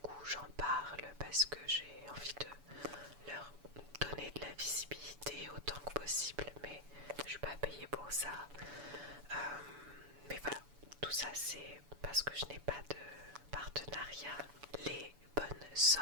j'en parle parce que j'ai envie de leur donner de la visibilité autant que possible, mais je suis pas payée pour ça. Mais voilà, tout ça c'est parce que je n'ai pas de partenariat. Les bonnes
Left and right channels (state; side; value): late; left; 7.0 ms